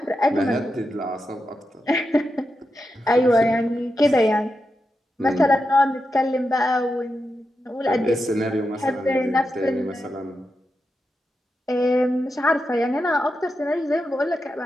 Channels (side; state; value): both; normal; correlation 0.88